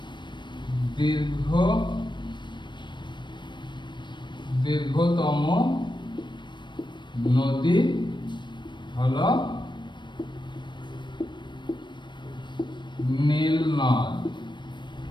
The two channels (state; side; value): late; right; 0.22 ms